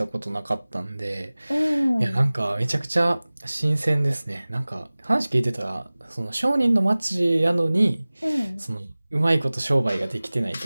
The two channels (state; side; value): inverted; both; correlation -0.99